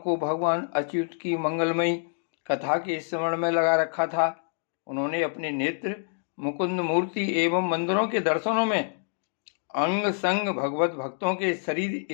भगवान अच्युत की मंगलमयी कथा के स्मरण में लगा रखा था। उन्होंने अपने नेत्र मुकुंद मूर्ति एवं मंदिरों के दर्शनों में, अंग संग भगवत भक्तों के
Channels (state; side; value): silent; right; digital silence